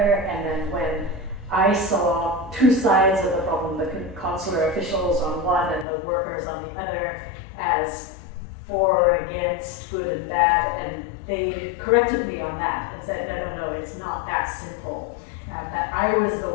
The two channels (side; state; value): right; drops out; at 5.9 s